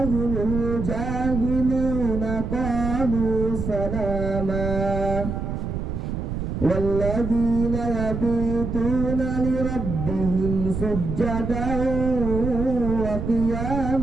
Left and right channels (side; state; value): right; noise; rumble, 4 dB below the sound